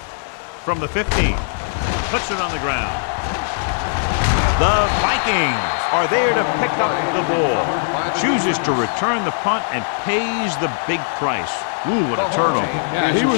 From the 15, puts it on the ground. The Vikings are there to pick up the ball. Chooses to return the punt and pays the big price. Ooh, what a turnover. Yeah, he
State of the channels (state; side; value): silent; right; digital silence